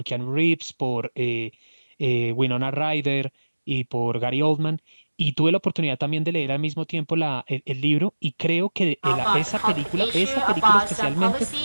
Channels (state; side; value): inverted; both; correlation -1.00